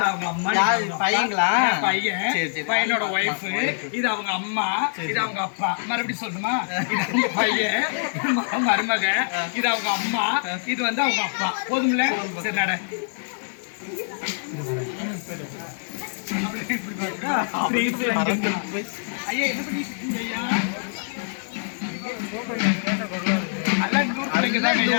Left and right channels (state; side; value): silent; right; digital silence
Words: அவங்க அம்மா பையங்களா? பையனோட ஒய்ஃப், இது அவங்க அம்மா, இது அவங்க அப்பா. மறுபடியும் சொல்லணுமா? இது அவங்க பையன் மருமக, இது அவங்க அம்மா, இது வந்து அவங்க அப்பா. போதும்ல? சரி நட. ஐயா என்ன பண்ணிட்டு இருக்கீங்க ஐயா? நல்லா